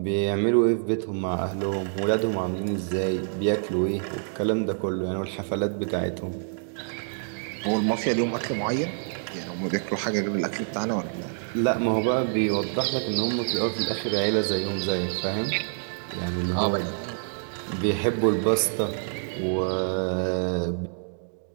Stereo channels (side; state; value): left; silent; digital silence